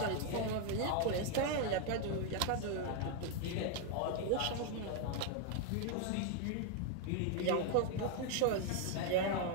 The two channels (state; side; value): different; both; correlation 0.01